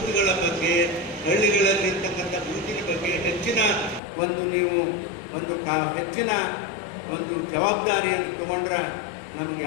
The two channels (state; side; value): drops out; right; at 4.0 s